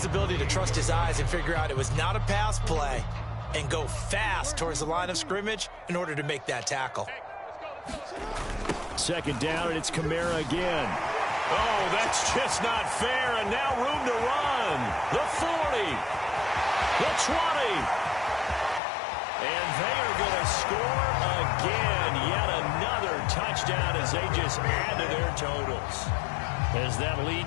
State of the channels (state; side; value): drops out; right; at 18.8 s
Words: ability to trust his eyes and figure out it was not a pass play and go fast towards the line of scrimmage in order to make that tackle. 2nd down, and it's Kamara again. Oh, that's just not fair, and now room to run. The 40, the 20, and they are going to score again. Yet another touchdown as they just add to their totals. As that